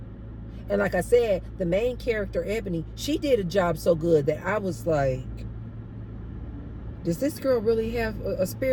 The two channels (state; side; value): identical; both; correlation 1.00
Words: And like I said, the main character, Ebony, she did a job so good that I was like, does this girl really have a